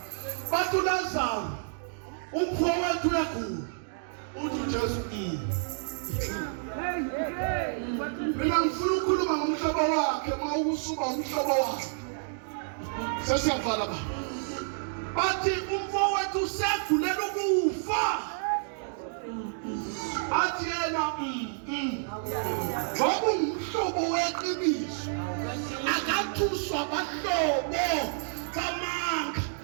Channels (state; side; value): silent; left; digital silence